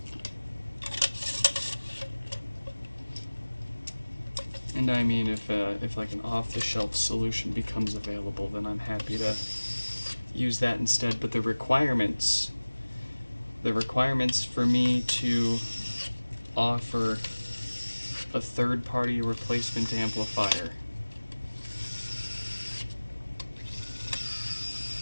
And I mean, if like an off-the-shelf solution becomes available, then I'm happy to use that instead. But the requirements for me to offer a third-party replacement amplifier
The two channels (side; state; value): both; inverted; correlation -1.00